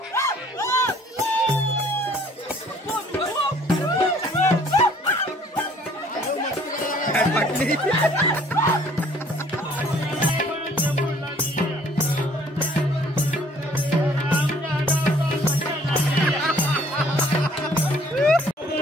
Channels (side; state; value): both; normal; correlation 0.58